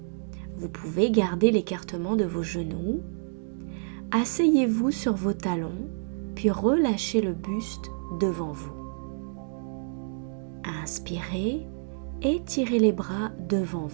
Vous pouvez garder l'écartement de vos genoux. Asseyez-vous sur vos talons, puis relâchez le buste devant vous. Inspirez, étirez les bras devant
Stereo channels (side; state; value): left; silent; digital silence